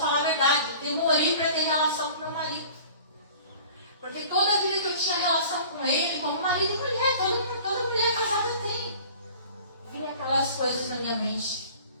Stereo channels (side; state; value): both; inverted; correlation -0.45